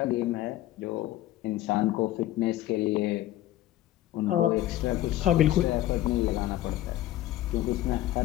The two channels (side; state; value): right; quieter; 14.3 dB